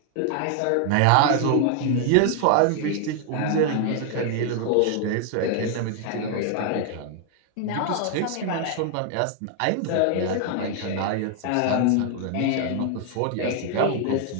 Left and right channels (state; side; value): different; both; correlation 0.00